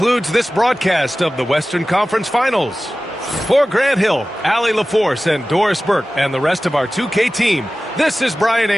this broadcast of the Western Conference Finals. For Grant Hill, Allie LaForce, and Doris Burke, and the rest of our 2K team, this is Brian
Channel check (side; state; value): both; normal; correlation 0.96